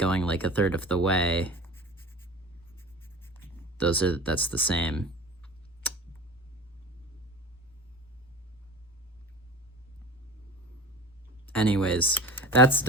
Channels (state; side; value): normal; both; correlation 0.36